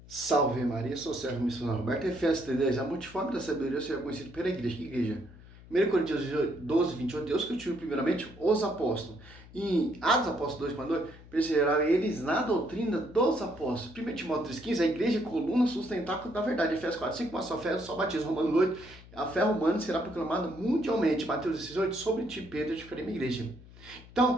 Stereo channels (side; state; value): left; noise; hum, 20 dB below the sound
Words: Salve Maria, sou o Sérgio Missionário Roberto, Efésios 3:10, a multiforme da sabedoria será conhecido pela igreja. Que igreja? 1 Coríntios 12:28, Deus constituiu primeiramente os apóstolos. Em Atos Apóstolos 2:2, perseveraram eles na doutrina dos apóstolos. 1 Timóteo 3:15, a igreja é coluna sustentável da verdade. Efésios 4:5, uma só fé, só batismo. Romanos 8, a fé romana será proclamada mundialmente. Mateus 16:8, sobre ti, Pedro, te farei minha igreja. Então,